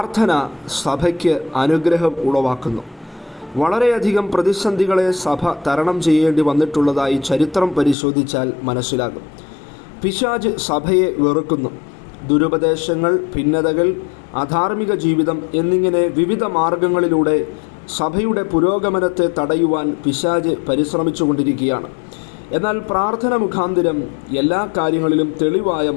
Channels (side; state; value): right; drops out; at 8.0 s